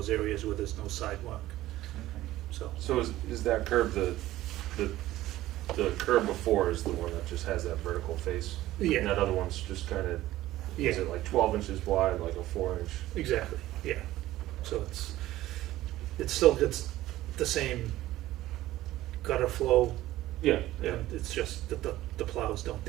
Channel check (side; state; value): left; quieter; 15.5 dB